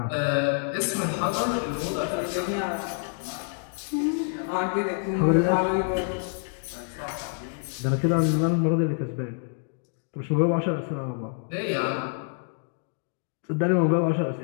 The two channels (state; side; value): silent; right; 60 dB below the other